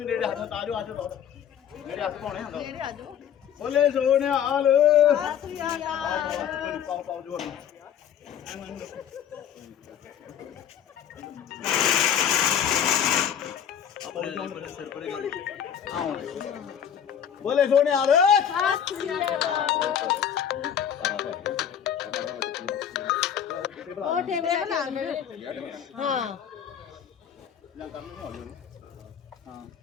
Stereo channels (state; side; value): quieter; right; 8.9 dB